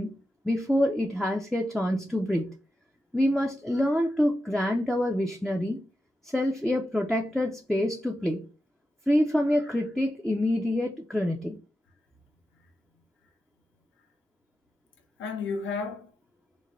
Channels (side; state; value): both; normal; correlation 0.90